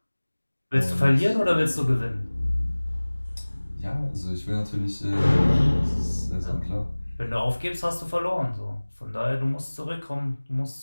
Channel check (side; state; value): both; inverted; correlation -1.00